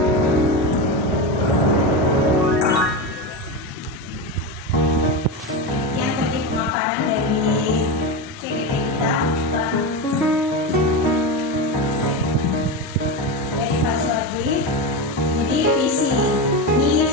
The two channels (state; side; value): normal; both; correlation 0.17